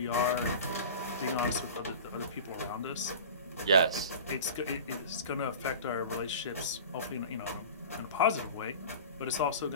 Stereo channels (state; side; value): inverted; both; correlation -0.36